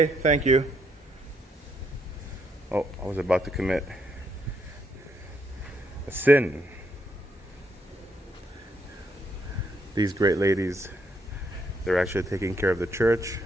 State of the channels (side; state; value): both; normal; correlation 0.75